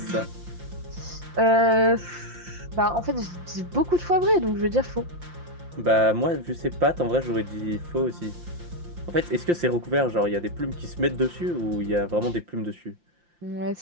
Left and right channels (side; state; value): left; late; 5.7 ms